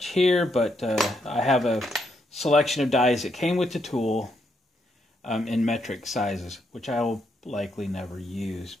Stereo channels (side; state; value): both; normal; correlation 0.77